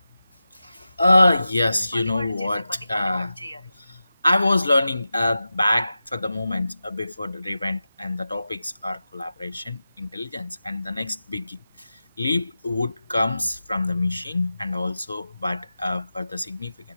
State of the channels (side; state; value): both; inverted; correlation -0.93